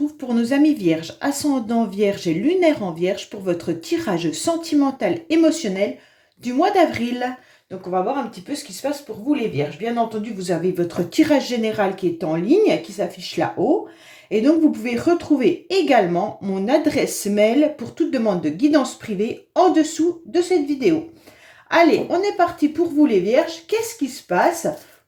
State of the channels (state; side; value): identical; both; correlation 1.00